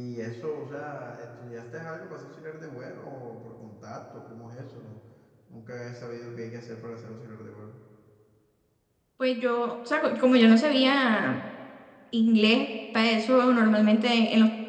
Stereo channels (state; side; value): identical; both; correlation 1.00